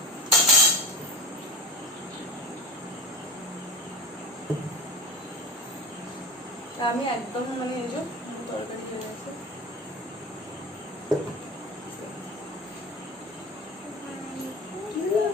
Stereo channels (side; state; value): both; normal; correlation 0.29